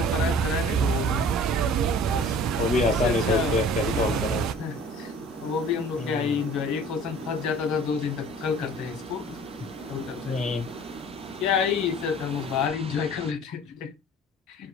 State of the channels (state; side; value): normal; both; correlation 0.46